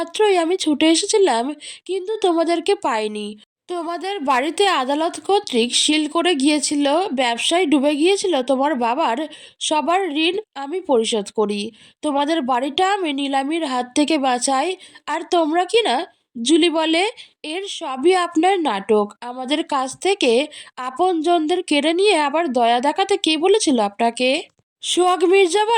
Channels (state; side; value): identical; both; correlation 1.00